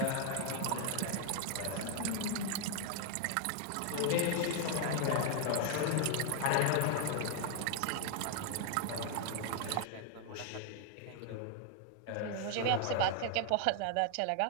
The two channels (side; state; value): both; different; correlation 0.00